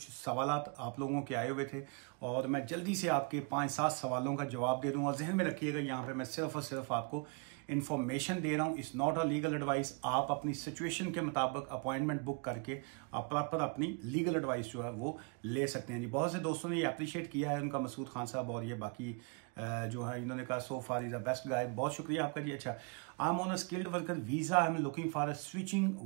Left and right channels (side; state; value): left; quieter; 34.0 dB